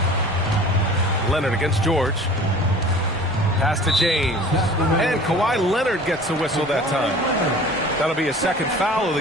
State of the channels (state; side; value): normal; both; correlation 0.44